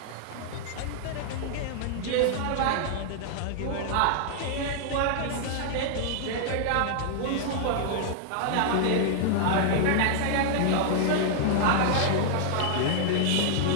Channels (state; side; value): different; both; correlation -0.01